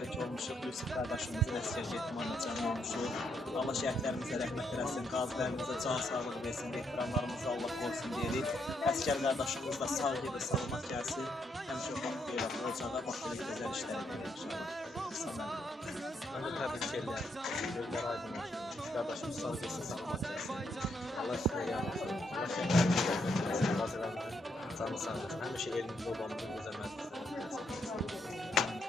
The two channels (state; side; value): normal; both; correlation 0.76